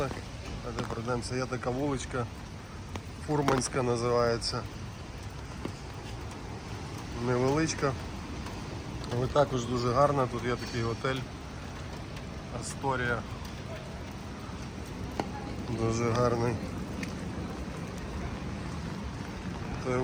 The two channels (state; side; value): identical; both; correlation 1.00